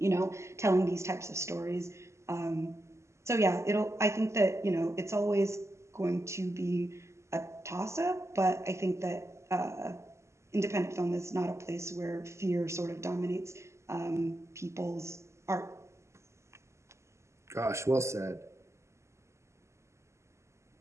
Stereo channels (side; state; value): left; late; 0.13 ms